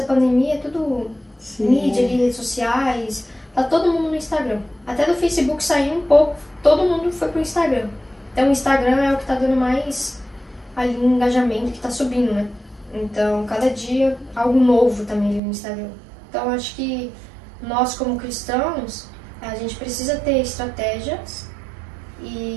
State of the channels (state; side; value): drops out; left; at 15.4 s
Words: pandemia é tudo mídia ali, redes sociais, tá todo mundo no Instagram. Até do Facebook saiu um pouco, todo mundo foi pro Instagram. Então o Instagram é o que tá dando mais ali um engajamento, que tá subindo, né? Então cada dia algo novo também ali no Instagram. Então eu acho que nós como cristãos, a gente precisa ter estratégias